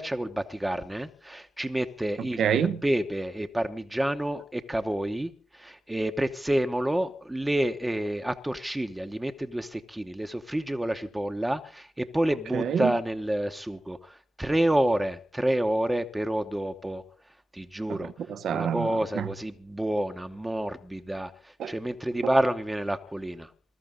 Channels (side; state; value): both; normal; correlation 0.94